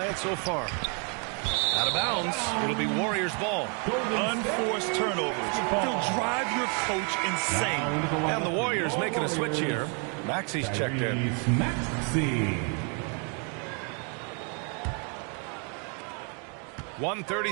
so far. Out of bounds. It'll be Warriors ball. Unforced turnovers. They'll drive your coach insane. And the Warriors making a switch here. Maxi's checked in. Maxey.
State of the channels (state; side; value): quieter; left; 37.4 dB